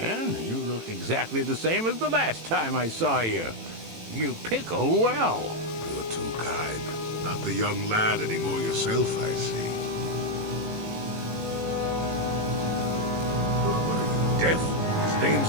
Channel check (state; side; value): late; left; 18 ms